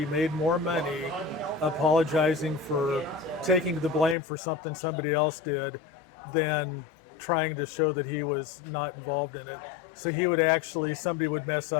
made more money apologizing for taking the blame for something somebody else did than trying to show that he was not involved in it. So he would actually, somebody would mess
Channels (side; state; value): right; drops out; at 4.2 s